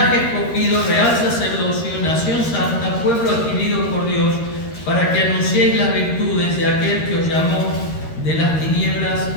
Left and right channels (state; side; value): late; right; 13 ms